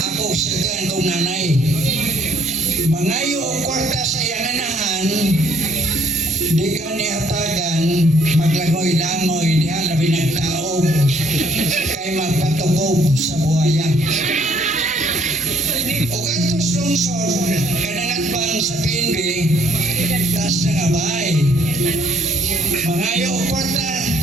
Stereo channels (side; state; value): both; normal; correlation 0.65